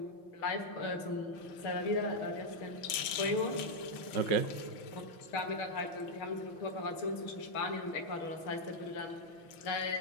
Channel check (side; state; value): right; late; 6.6 ms